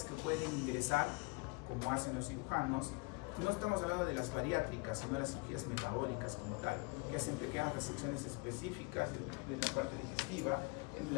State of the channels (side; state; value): right; quieter; 28.7 dB